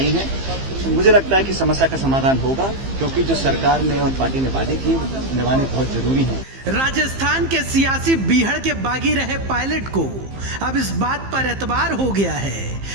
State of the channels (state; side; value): late; left; 15 ms